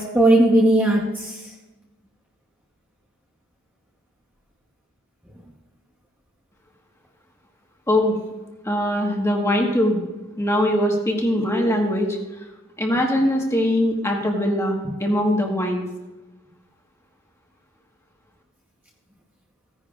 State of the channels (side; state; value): both; normal; correlation 0.74